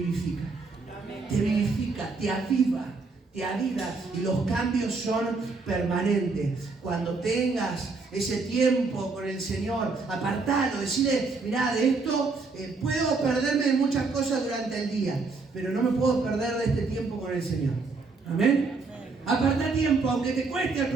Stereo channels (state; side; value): quieter; left; 4.1 dB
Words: te vivifica, te aviva, y los cambios son permanentes. Cuando tengas ese tiempo con el Señor, apartalo, decirle, mirá, de esto puedo perderme de muchas cosas durante el día, pero no me puedo perder de este tiempo con el Señor. Amén. Apartá tiempo, aunque te cueste al